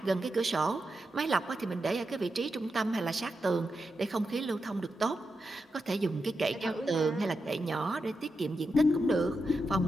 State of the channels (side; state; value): both; normal; correlation 0.87